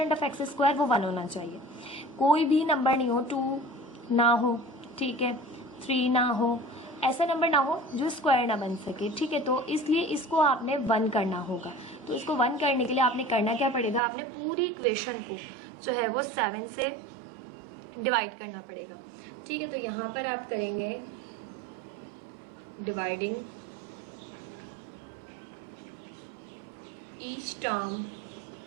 ऑफ x² वो 1 होना चाहिए। कोई भी नंबर नहीं हो, 2 ना हो, ठीक है, 3 ना हो, ऐसा नंबर ना हो जो स्क्वायर ना बन सके। ठीक है, तो इसलिए इसको आपने 1 करना होगा। तो इसको 1 करने के लिए आपने करना क्या पड़ेगा, आपने पूरी इक्वेशन को जो है वो 7 से डिवाइड करना पड़ेगा। ठीक है, तो यहाँ पर आप करेंगे डिवाइडिंग ईच टर्म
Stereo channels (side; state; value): left; drops out; at 14.0 s